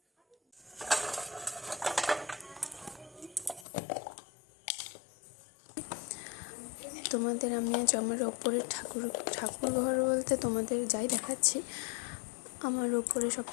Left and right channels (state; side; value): drops out; right; at 3.7 s